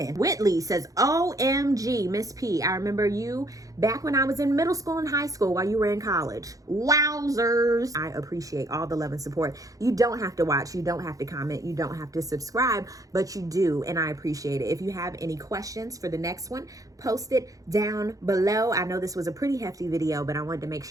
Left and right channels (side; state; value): left; late; 0.17 ms